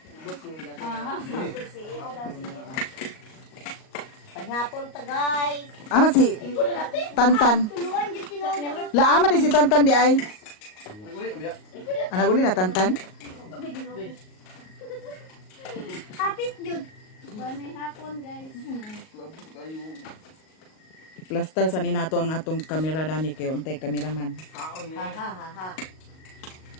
Paghapon ta guys. Ama si Tantan. Tuluan dyan tinood. Laama di si Tantan di ay. Naguli na biya. Anak uli na Tantan. Kapit dyan. Banay hapon, guys. Plaster sa ninato ang atong kamera dani kay untay kameraman. Ha.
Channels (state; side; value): late; right; 38 ms